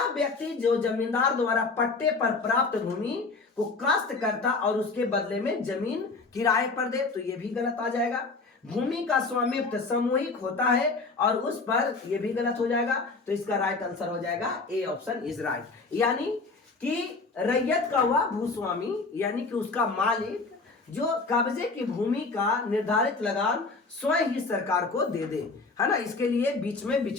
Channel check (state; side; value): quieter; right; 3.9 dB